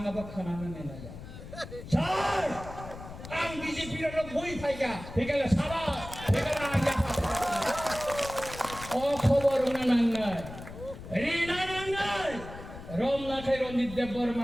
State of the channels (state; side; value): noise; left; rumble, 13 dB below the sound